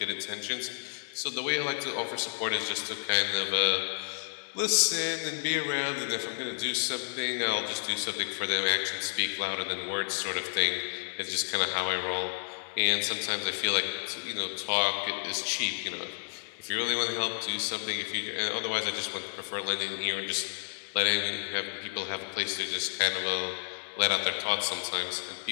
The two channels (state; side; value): silent; right; 57 dB below the other